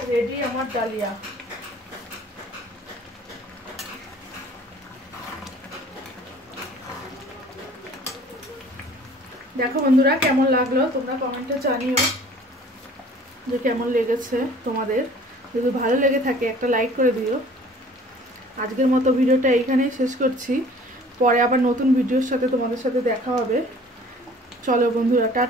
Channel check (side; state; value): both; normal; correlation 0.50